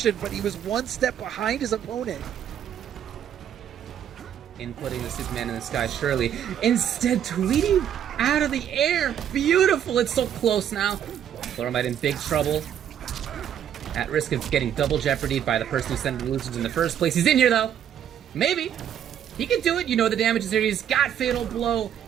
but he was one step behind his opponent. Inputting the Superman in the sky, surely. Instead, Tweedy out of the air. Beautiful. It's so close now. Pluralmite in big trouble. At risk of getting double jeopardied by the person who sent the illusions in the first place. He's in here, though. Maybe. He can do it. You know the damage is here. He's got Fatal Blow.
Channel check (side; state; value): left; quieter; 9.6 dB